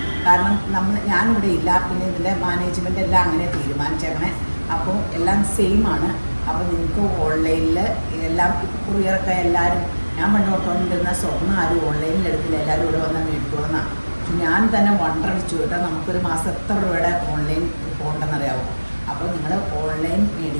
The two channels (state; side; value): inverted; both; correlation -1.00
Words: കാരണം ഞാനിവിടെ ഇല്ല, പിന്നെ ഇതിൻ്റെ മാനേജ്മെൻ്റ് എല്ലാം അങ്ങനെ തീരുമാനിച്ചേക്കണേ. അപ്പോൾ എല്ലാം സെയിം ആണ്. അപ്പോൾ നിങ്ങൾക്ക് ഓൺലൈനിൽ എല്ലാം കൊറിയറൊക്കെ എല്ലാവരും, ഞാൻ പണ്ട് ഓർത്തുകൊണ്ടിരുന്ന സ്വർണ്ണം ആരും ഓൺലൈനിൽ എടുത്തില്ല, എല്ലാവരും ഇവിടെ വന്നാൽ മേടിക്കുമെന്നാണ്. ഞാൻ തന്നെ വണ്ടടിച്ചു കേട്ടോ, നമുക്കൊരു മാസം എത്ര രൂപയുടെ ഓൺലൈൻ പോകണ്ടെന്നറിയാമോ. അപ്പോൾ നിങ്ങൾ ഓൺലൈൻ